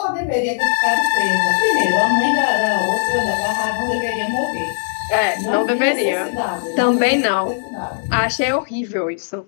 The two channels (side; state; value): right; silent; digital silence